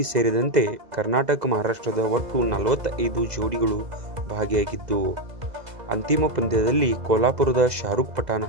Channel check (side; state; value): left; late; 2.0 ms